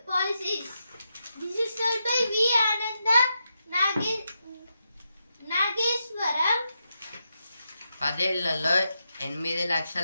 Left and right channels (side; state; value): both; inverted; correlation -0.85